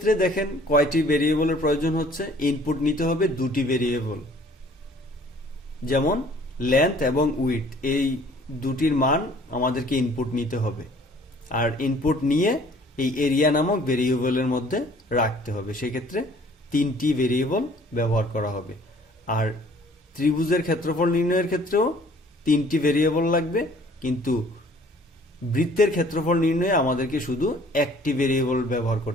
দেখেন কয়টি ভেরিয়েবলের প্রয়োজন হচ্ছে, ইনপুট নিতে হবে দুটি ভেরিয়েবল, যেমন লেন্থ এবং উইডথ, এই দুটির মান আমাদেরকে ইনপুট নিতে হবে। আর ইনপুট নিয়ে এই এরিয়া নামক ভেরিয়েবলের মধ্যে রাখতে হবে, সেক্ষেত্রে তিনটি ভেরিয়েবল ব্যবহার করা হবে। আর ত্রিভুজের ক্ষেত্রফল নির্ণয়ের ক্ষেত্রেও তিনটি ভেরিয়েবল লাগবে, কিন্তু বৃত্তের ক্ষেত্রফল নির্ণয়ে আমাদেরকে শুধু একটি ভেরিয়েবল ব্যবহার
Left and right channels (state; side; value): normal; both; correlation 0.55